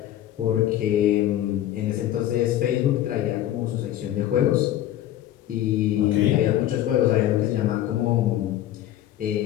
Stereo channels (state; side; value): quieter; right; 12.7 dB